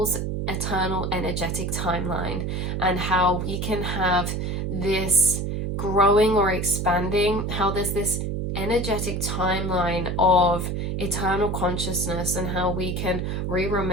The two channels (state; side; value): noise; right; hum, 2 dB below the sound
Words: eternal energetic timeline, and how we can have this growing or expanding, how there's this energetic timeline of eternal consciousness, and how we can